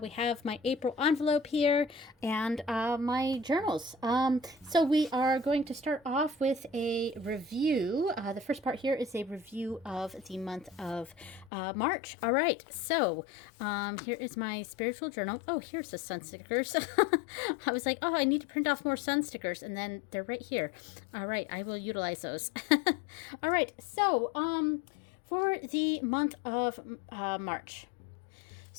have my April envelope here and my journals. So we are going to start off with a review. The first part here is a review of the month of March. All right, so here is my spiritual journal. Oh, here's the sun stickers. I was like, oh, I need to print off more sun stickers, and then they're right here. All right, I will utilize those. All right, so for the month of March.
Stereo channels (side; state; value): right; drops out; at 11.5 s